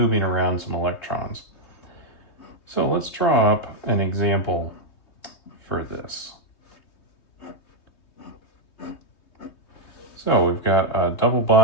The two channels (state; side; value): late; right; 3.2 ms